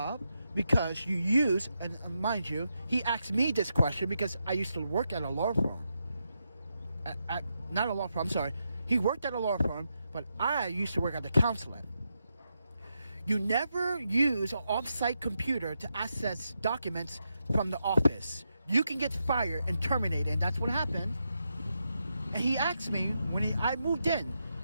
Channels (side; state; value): both; inverted; correlation -0.85